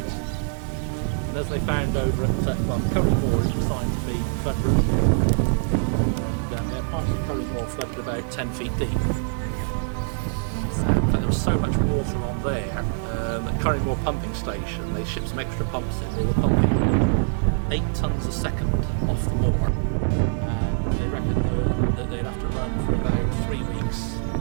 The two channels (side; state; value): left; silent; 61 dB below the other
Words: And as they found over at Curry Moor, it was designed to be flood-proof. And parts of Curry Moor flooded about 10 feet deep. But there was so much water on there at Curry Moor Pumping Station, they shipped some extra pumps in. They were pumping 8 tonnes a second off the moor. And they reckon that they'd have to run for about 3 weeks,